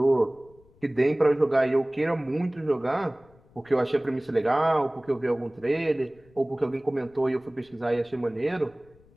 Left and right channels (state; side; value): noise; left; rumble, 29 dB below the sound